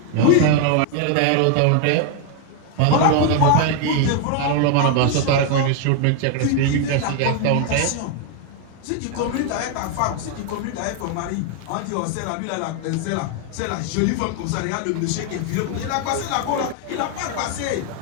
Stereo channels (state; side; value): different; both; correlation 0.00